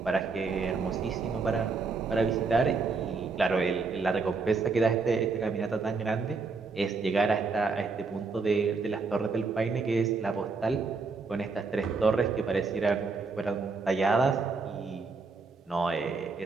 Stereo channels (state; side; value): quieter; left; 4.3 dB